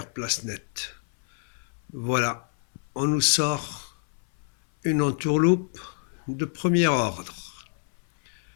place nette. Voilà, on nous sort une entourloupe de premier ordre.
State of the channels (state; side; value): silent; right; 60 dB below the other